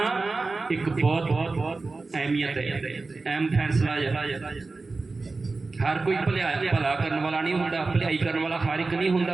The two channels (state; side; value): quieter; left; 3.7 dB